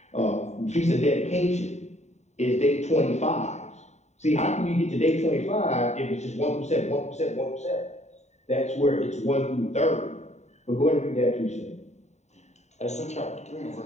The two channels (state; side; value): late; right; 0.33 ms